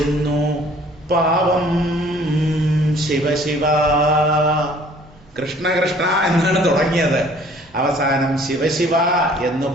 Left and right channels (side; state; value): both; normal; correlation 0.55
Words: പാവം ശിവശിവ. കൃഷ്ണ കൃഷ്ണ എന്നാണ് തുടങ്ങിയത്, അവസാനം ശിവശിവ എന്ന്